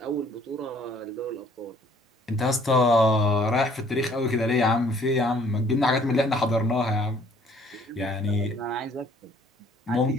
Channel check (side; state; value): both; normal; correlation 0.59